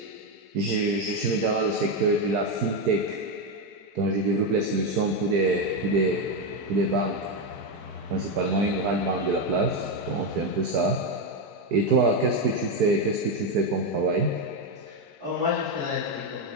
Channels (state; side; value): late; left; 4.6 ms